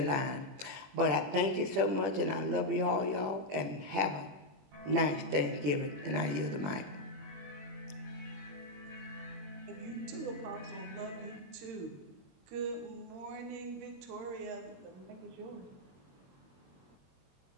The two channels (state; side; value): late; left; 21 ms